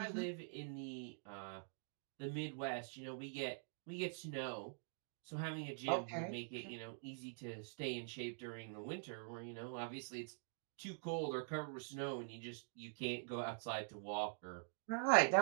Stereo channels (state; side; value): silent; left; digital silence